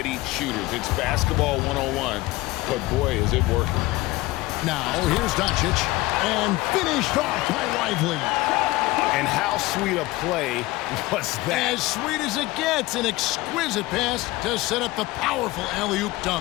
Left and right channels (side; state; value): right; quieter; 19.5 dB